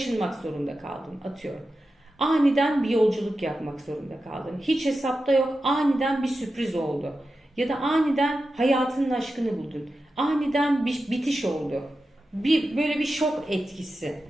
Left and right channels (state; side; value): normal; both; correlation 0.91